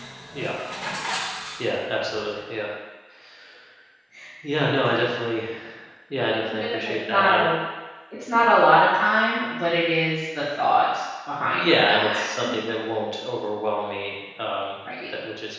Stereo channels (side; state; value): both; identical; correlation 1.00